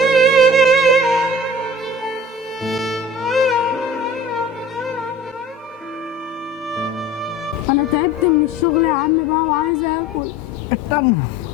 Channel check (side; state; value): both; normal; correlation 0.42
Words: تعبت من الشغل يا عم بقى وعايزه اكل. استنى،